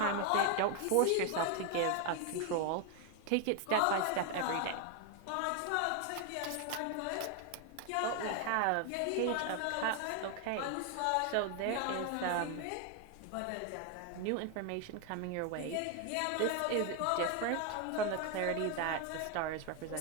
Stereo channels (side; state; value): both; different; correlation 0.01